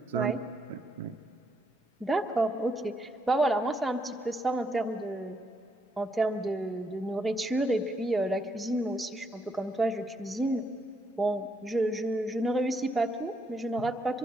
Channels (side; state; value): both; normal; correlation 0.77